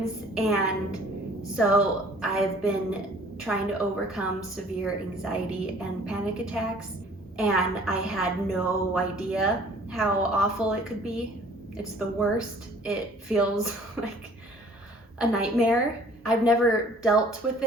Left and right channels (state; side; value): normal; both; correlation 0.53